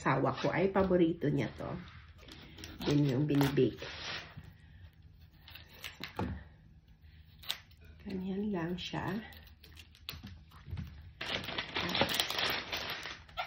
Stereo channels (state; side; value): identical; both; correlation 1.00